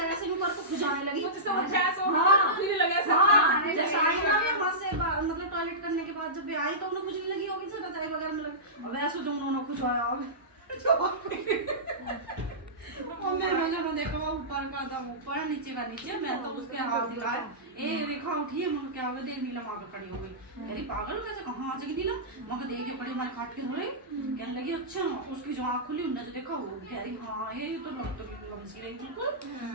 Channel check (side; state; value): both; normal; correlation -0.17